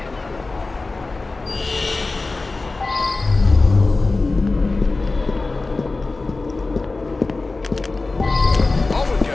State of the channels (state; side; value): quieter; right; 3.5 dB